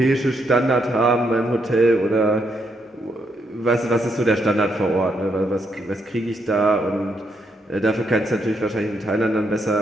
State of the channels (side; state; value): both; normal; correlation 0.77